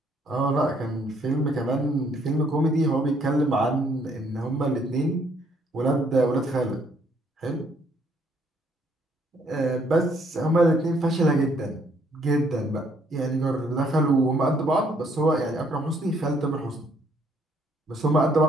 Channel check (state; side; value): normal; both; correlation 0.67